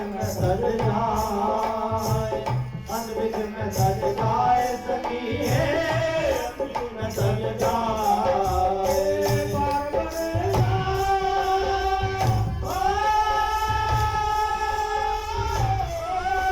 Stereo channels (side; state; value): both; identical; correlation 1.00